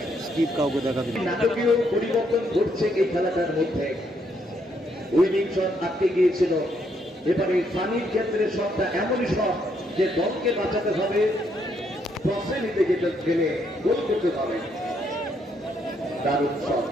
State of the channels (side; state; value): both; normal; correlation 0.73